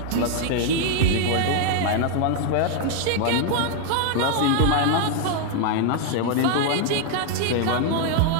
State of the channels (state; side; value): different; both; correlation 0.00